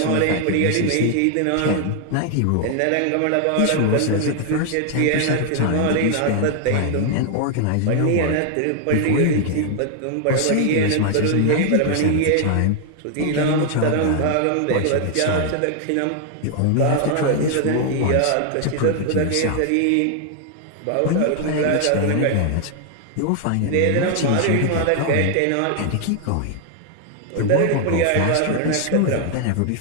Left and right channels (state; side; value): different; both; correlation 0.00